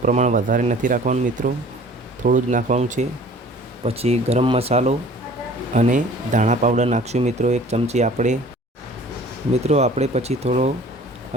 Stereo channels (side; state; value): both; normal; correlation 0.48